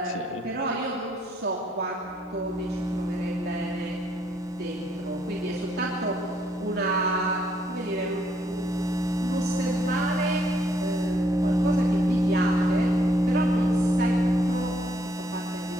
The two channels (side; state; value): both; normal; correlation 0.69